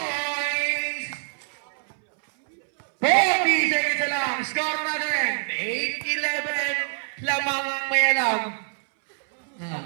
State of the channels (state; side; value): silent; left; 62 dB below the other